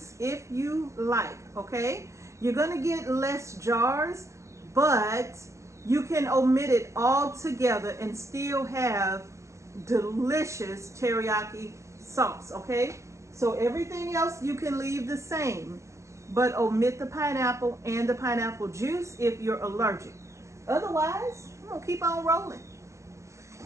if you like, okay? You're going to get less jars, but you can omit it all together and still have delicious teriyaki sauce, okay? So everything else you can leave the same, but omit the pineapple and the pineapple juice if you're allergic. Otherwise, I'm going to keep on rolling.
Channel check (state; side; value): late; left; 0.14 ms